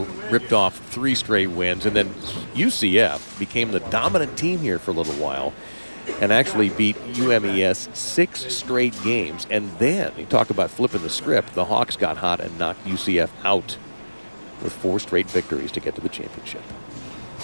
ripped off 3 straight wins. And then UCF became the dominant team here for a little while and actually beat UMES 6 straight games. And then, you talk about flipping the script, the Hawks got hot and knocked UCF out with 4 straight victories to get to the championship.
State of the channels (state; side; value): inverted; both; correlation -1.00